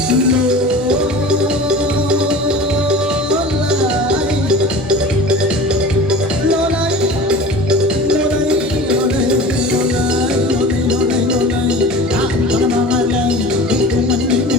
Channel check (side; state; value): both; normal; correlation 0.37